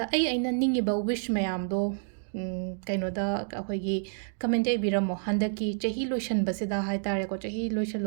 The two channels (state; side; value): silent; left; digital silence